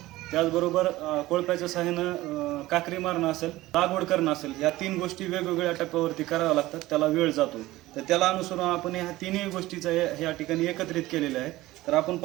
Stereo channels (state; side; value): quieter; left; 17.5 dB